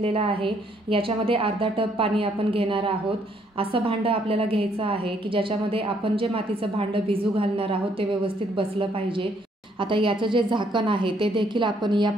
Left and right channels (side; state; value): both; normal; correlation 0.69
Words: आहे। याच्यामध्ये अर्धा टब पाणी आपण घेणार आहोत। असं भांडं आपल्याला घ्यायचं आहे की ज्याच्यामध्ये आपण जे मातीचं भांडं भिजू घालणार आहोत ते व्यवस्थित बसलं पाहिजे। आता याचं जे झाकण आहे ते देखील आपण या